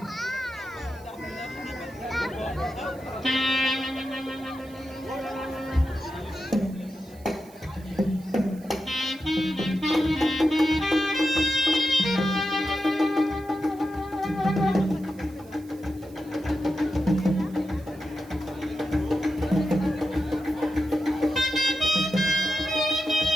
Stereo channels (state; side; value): noise; right; hiss, 26 dB below the sound